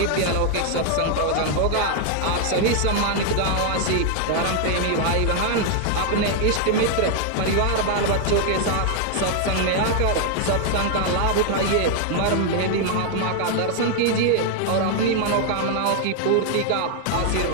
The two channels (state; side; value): different; both; correlation 0.00